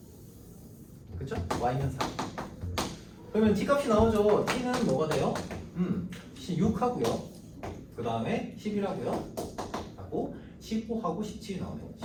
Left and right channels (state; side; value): identical; both; correlation 1.00